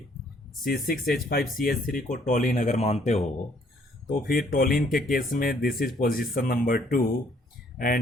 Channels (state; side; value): normal; both; correlation 0.64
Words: C6H5CH3 को टोलिन अगर मानते हो, तो फिर टोलिन के केस में this is position number 2